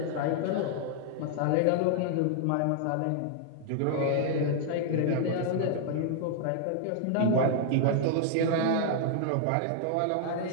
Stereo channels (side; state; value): both; different; correlation -0.01